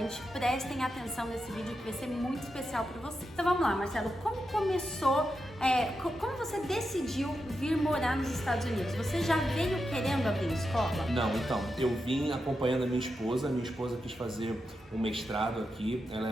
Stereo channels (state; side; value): normal; both; correlation 0.87